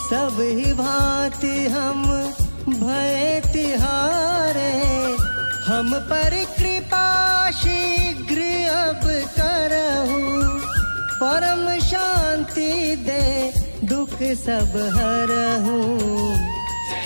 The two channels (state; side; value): inverted; both; correlation -1.00